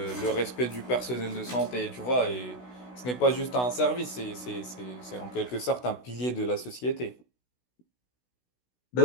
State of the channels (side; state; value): right; late; 16 ms